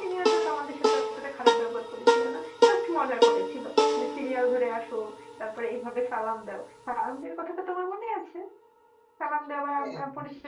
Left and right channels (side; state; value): both; identical; correlation 1.00